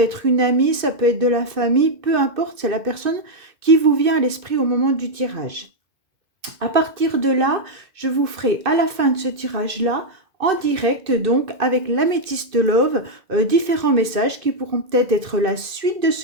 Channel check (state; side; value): late; left; 2.2 ms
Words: une amie, ça peut être de la famille, peu importe, c'est la personne qui vous vient à l'esprit au moment du tirage. À partir de là, je vous ferai à la fin de ce tirage-là, en direct donc avec l'améthyste love, différents messages qui pourront peut-être être la suite de